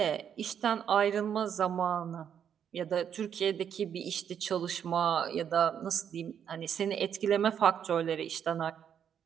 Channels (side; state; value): left; quieter; 8.5 dB